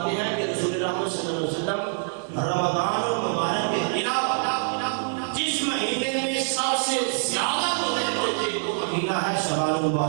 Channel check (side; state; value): left; silent; 62 dB below the other